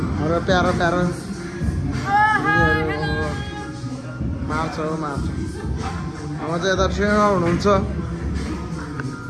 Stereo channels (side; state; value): both; identical; correlation 1.00